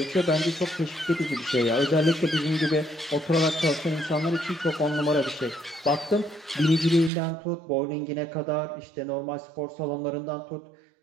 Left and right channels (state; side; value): drops out; left; at 7.1 s